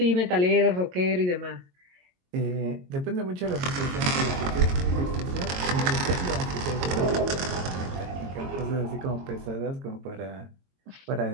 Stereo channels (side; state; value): left; late; 22 ms